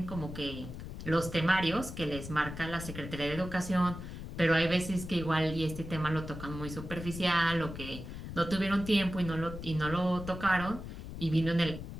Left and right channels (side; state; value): left; noise; rumble, 9 dB below the sound